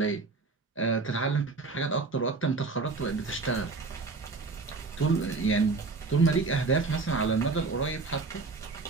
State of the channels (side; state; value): left; quieter; 4.0 dB